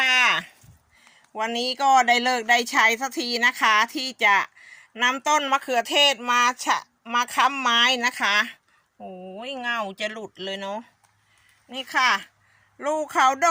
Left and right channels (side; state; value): both; identical; correlation 1.00